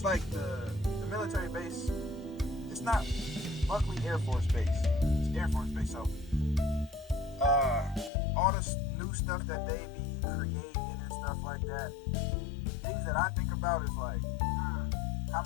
like the military base, it's not Buckley Air Force Base, it's Air Force Base. So all this new stuff that they be creating and stuff like that, things that I think about is like, how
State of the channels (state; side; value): drops out; right; at 8.1 s